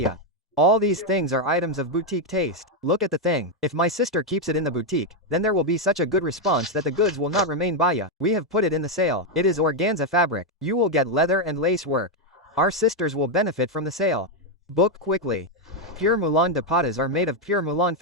All these things are items of boutique taste. Look at the thing. If my sister keeps it in the boutique, then there will be such a good response that the goods will not remain baya. We have put it in the sale. It is organza fabric. You will get leather and lace work. Our sisters will benefit from the sale. Book quickly. Pure Mulan dupattas are made of pure Mulan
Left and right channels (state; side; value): normal; both; correlation 0.03